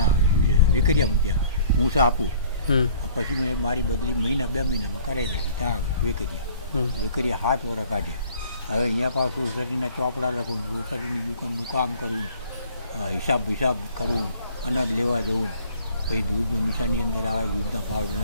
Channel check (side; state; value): both; inverted; correlation -0.54